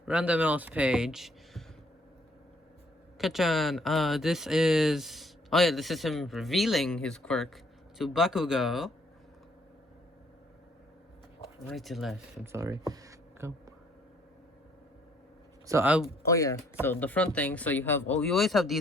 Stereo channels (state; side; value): normal; both; correlation 0.64